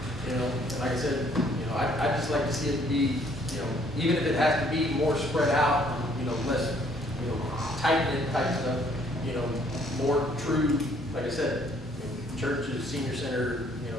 you know, and like I said, you know, I just like to see it be, you know, even if it has to be more spread out, you know, less, you know, tight-knit type stuff, you know, more true, like I said, you know, churches, senior center, you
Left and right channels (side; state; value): both; normal; correlation 0.63